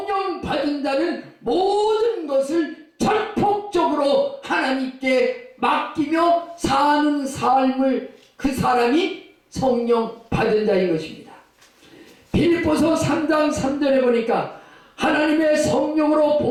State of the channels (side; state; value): both; identical; correlation 1.00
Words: 받은 자는 모든 것을 전폭적으로 하나님께 맡기며 사는 삶을 그 사람이 성령 받은 자인 것입니다. 빌립보서 3장 3절에 보니까 하나님의 성령으로